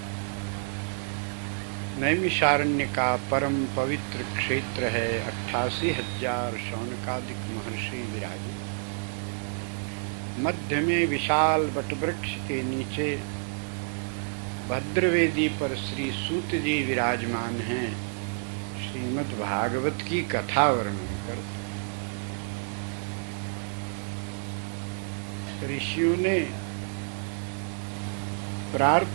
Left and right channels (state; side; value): silent; left; 59 dB below the other